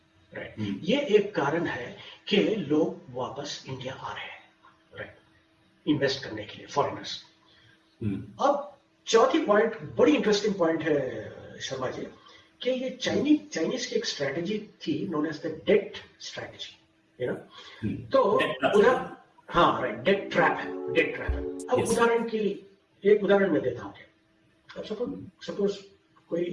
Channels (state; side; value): identical; both; correlation 1.00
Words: राइट? ये एक कारण है कि लोग वापस इंडिया आ रहे हैं, राइट, इन्वेस्ट करने के लिए, फॉरेनर्स। अब चौथी पॉइंट बड़ी इंटरेस्टिंग पॉइंट है शर्मा जी, कि ये चाइनीज की एक स्ट्रैटेजी थी known as the debt strategy, you know. तो उधर हाँ राइट, डेट ट्रैप है। अब उदाहरण के लिए एक उदाहरण मैं देता हूँ। अब सपोज कोई